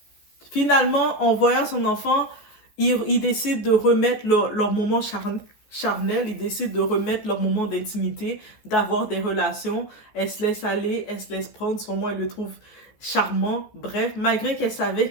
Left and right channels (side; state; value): right; late; 14 ms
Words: finalement, en voyant son enfant, il décide de remettre leur moment charnel, ils décident de remettre leur moment d'intimité, d'avoir des relations. Elle se laisse aller, elle se laisse prendre. Sur moi, elle le trouve charmant. Bref, malgré qu'elle savait